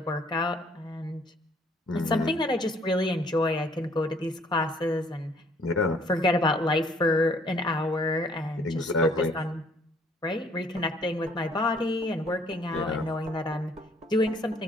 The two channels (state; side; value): normal; both; correlation 0.61